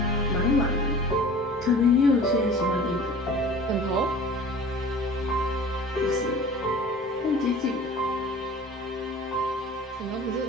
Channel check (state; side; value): normal; both; correlation 0.43